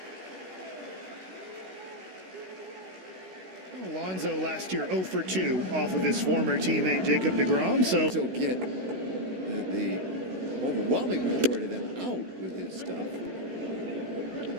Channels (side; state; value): left; late; 16 ms